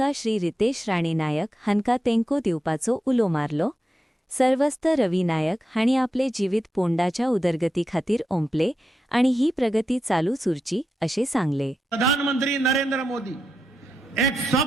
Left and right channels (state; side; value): normal; both; correlation 0.88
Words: श्री रितेश राणे नायक हांका तेंको दिवपाचो उलो मारलो। सर्वस्त रवी नायक हाणी आपले जीवित पोंडाच्या उदरगती खातीर ओंपले आणि ही प्रगती चालूच उरची अशें सांगले। प्रधानमंत्री नरेंद्र मोदी एक